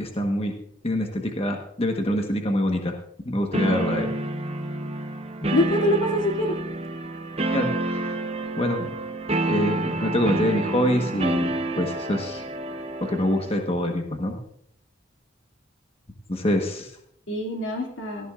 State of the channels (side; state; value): both; normal; correlation 0.59